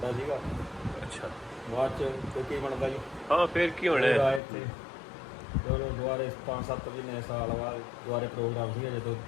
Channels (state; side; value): drops out; right; at 4.4 s